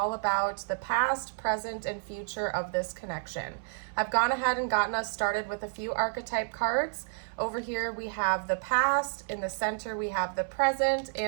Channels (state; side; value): silent; left; 58 dB below the other